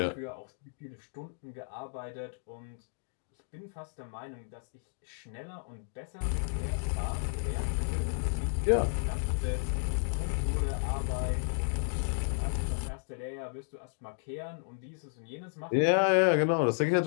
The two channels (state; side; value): silent; right; digital silence